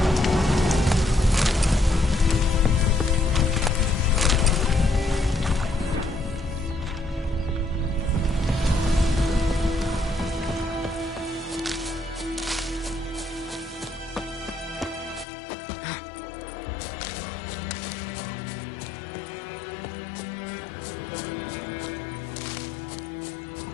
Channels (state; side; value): drops out; right; at 15.2 s